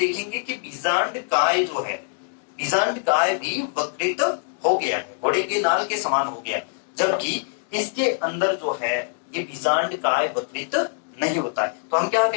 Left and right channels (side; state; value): right; silent; digital silence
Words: कि बीजांड काय जो है, बीजांड काय भी वक्रित हो गया है, घोड़े के नाल के समान हो गया, जबकि इसके अंदर जो है ये बीजांड काय वक्रित नहीं होता है। तो हम क्या